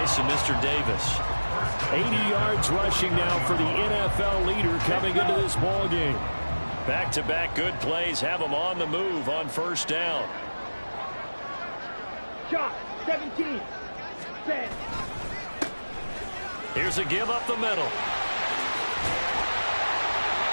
of Mr. Davis. 80 yards rushing now for the NFL leader coming into this ball game. Back-to-back good plays have them on the move on first down. Shot. 17. Set. Here's a give up the middle.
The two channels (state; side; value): inverted; both; correlation -1.00